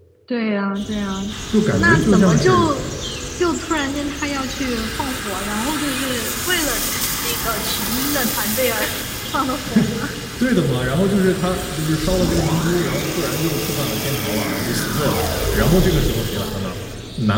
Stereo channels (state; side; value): identical; both; correlation 1.00